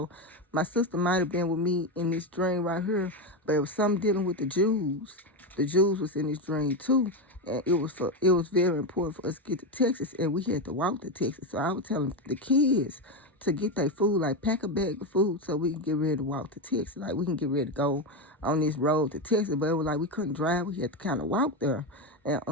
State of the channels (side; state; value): both; normal; correlation 0.12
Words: My sister might have been with me in this dream right here, but it was something dealing with the Jews. The Jews was in this dream too. And it was very important for us to get to Texas, and we had to walk to Texas. So I was telling the kids to get their food, like pack a bag of food so we can get ready to walk to Texas. Like we can get ready to go on this road to Texas. But it was like we couldn't drive. We had to kind of walk there.